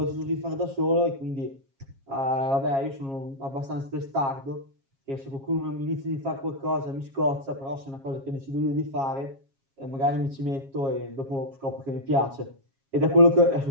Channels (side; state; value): left; late; 7.4 ms